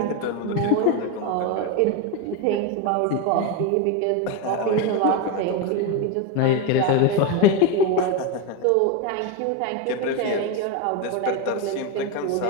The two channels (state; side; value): different; both; correlation 0.03